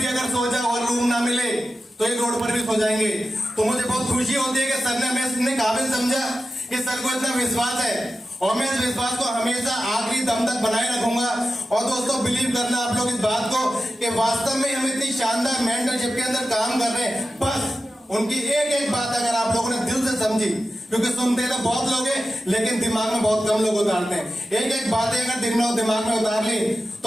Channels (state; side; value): normal; both; correlation 0.92